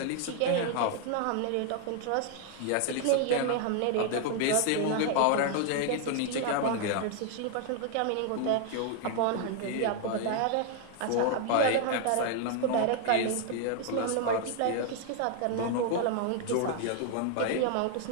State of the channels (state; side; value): different; both; correlation 0.00